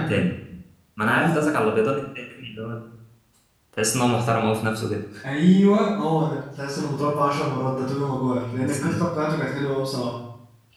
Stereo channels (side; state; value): both; identical; correlation 1.00